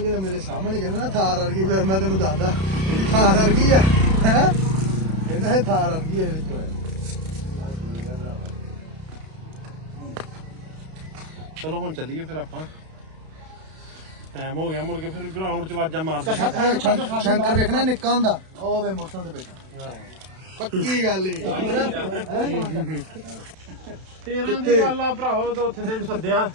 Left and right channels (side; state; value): left; late; 32 ms